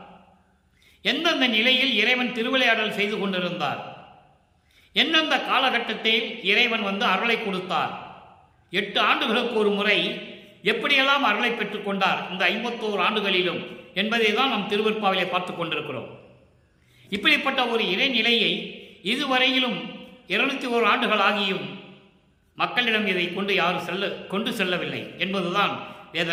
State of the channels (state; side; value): identical; both; correlation 1.00